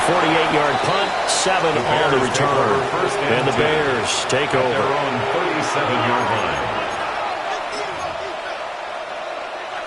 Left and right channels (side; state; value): both; identical; correlation 1.00